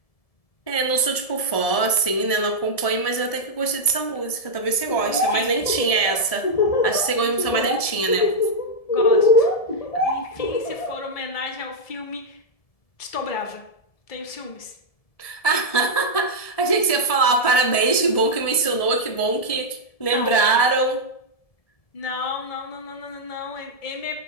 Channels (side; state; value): right; late; 1.7 ms